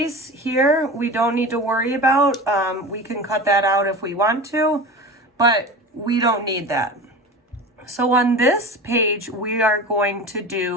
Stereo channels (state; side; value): normal; both; correlation 0.32